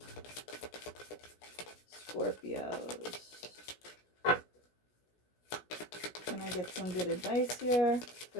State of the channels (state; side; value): late; right; 17 ms